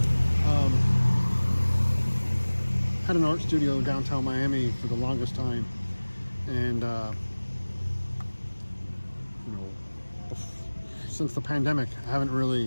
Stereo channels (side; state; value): both; inverted; correlation -1.00